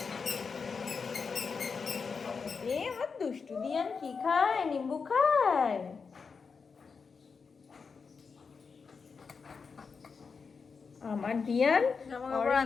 আমার দুষ্টু দিয়ান কি খায়? নিম্বু খায়। আমার দিয়ান জামা কাপড়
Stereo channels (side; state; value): right; quieter; 5.3 dB